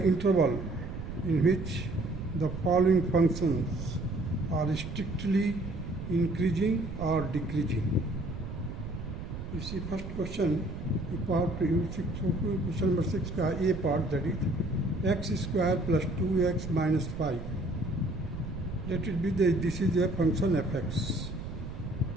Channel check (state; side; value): noise; right; rumble, 8 dB below the sound